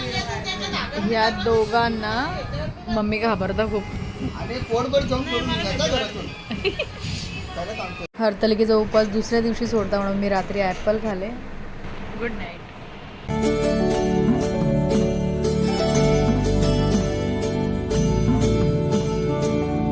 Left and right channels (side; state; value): both; identical; correlation 1.00